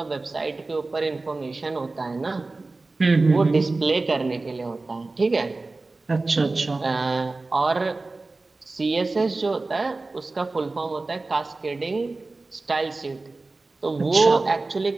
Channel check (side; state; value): left; quieter; 3.4 dB